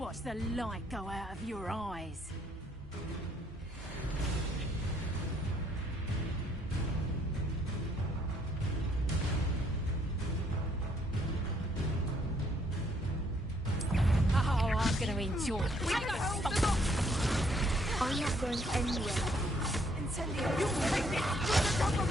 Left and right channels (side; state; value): both; normal; correlation 0.68